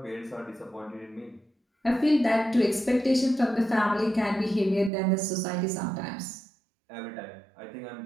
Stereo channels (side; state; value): left; drops out; at 4.9 s